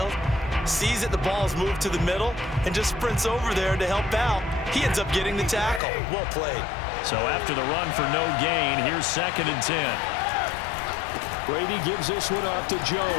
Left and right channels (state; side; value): drops out; right; at 5.8 s